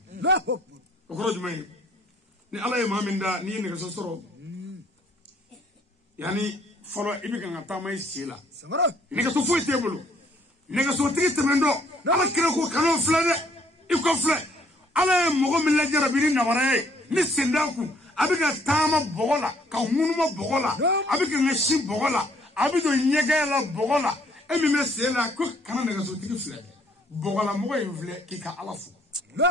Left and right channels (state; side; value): normal; both; correlation 0.63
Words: ko rojumay ni ala e maminda ni ne so soro yani folo ibi kan ta may sila ne ka so fo tebulu ne ka so tigi temendo ala kire ko kanu flade i kofle ala mogo mi la jarabiri na warae ni sendaku abiga tama bogola ka munuma bogola abiga ngashi bogola abido nyegela bogola emi mesela ko kana daga so tigi fle bogola mo e vle ki ka alafu